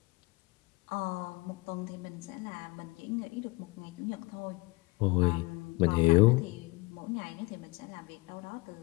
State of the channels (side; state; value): right; quieter; 24.6 dB